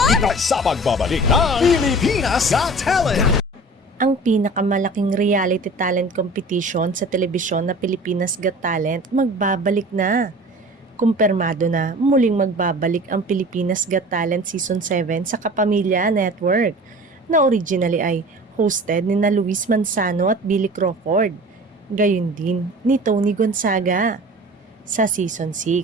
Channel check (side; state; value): both; normal; correlation 0.41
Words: Dahil sa pagbabalik ng Pilipinas Got Talent! Ang pinakamalaking reality talent competition sa telebisyon na Pilipinas Got Talent magbabalik na. Kumpirmado na muling magbabalik ang Pilipinas Got Talent Season 7 sa Kapamilya Network na originally ay hosted ni na Luis Manzano at Billy Crawford. Gayon din ni Tony Gonzaga. Sa Season